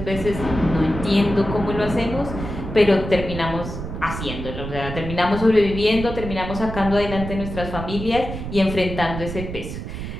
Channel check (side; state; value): right; noise; rumble, 7 dB below the sound